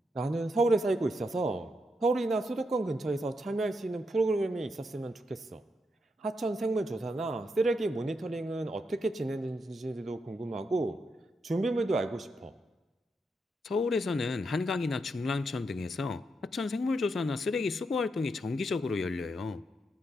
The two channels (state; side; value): normal; both; correlation 0.82